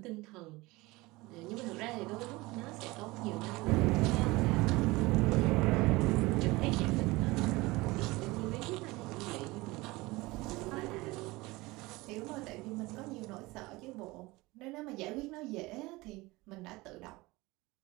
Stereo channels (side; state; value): left; quieter; 21.7 dB